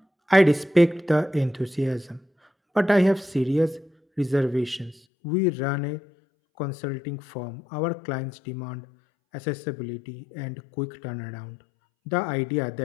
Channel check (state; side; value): drops out; right; at 5.0 s